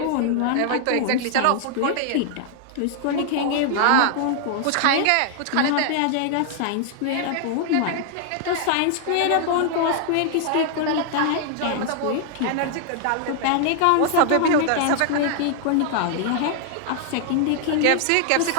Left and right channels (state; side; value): different; both; correlation 0.00